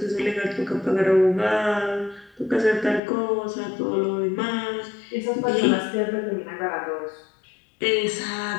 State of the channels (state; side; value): drops out; right; at 3.0 s